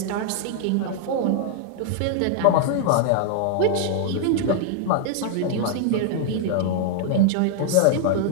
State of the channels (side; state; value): both; different; correlation 0.00